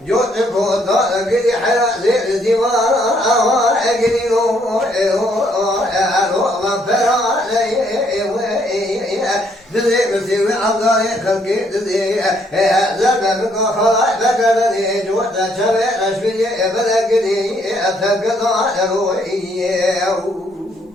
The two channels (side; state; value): both; normal; correlation 0.69